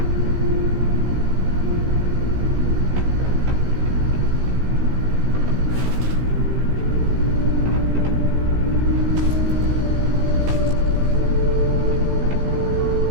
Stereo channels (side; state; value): left; late; 16 ms